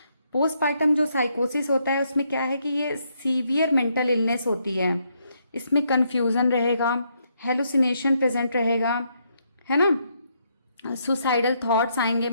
पोस्टपार्टम जो साइकोसिस होता है उसमें क्या है कि ये सीवियर मेंटल इलनेस होती है, इसमें कंफ्यूजन रहेगा, हेलुसिनेशन प्रेजेंट रहेगा, है ना, सुसाइडल थॉट्स आएंगे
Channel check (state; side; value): inverted; both; correlation -0.75